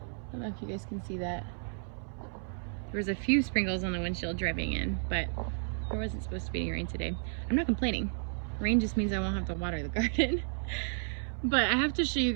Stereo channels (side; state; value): left; silent; 56 dB below the other